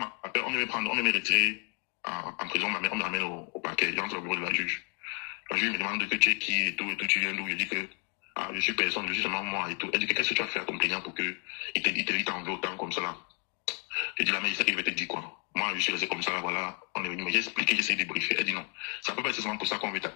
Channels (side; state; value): right; quieter; 37.9 dB